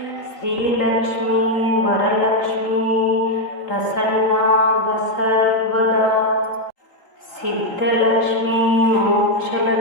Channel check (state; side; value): late; right; 3.8 ms